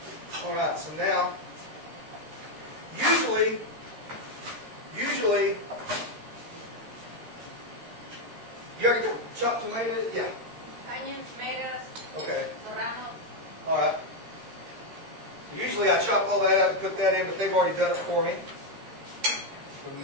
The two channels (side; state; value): left; late; 13 ms